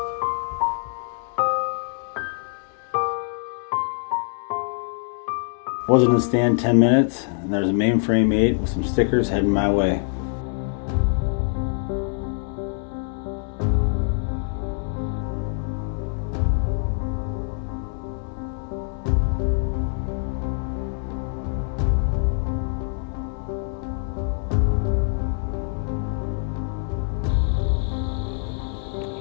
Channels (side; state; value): right; silent; 62 dB below the other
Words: Wasn't in the stand 10 minutes, and there's a mainframe 8 with some stickers heading my way.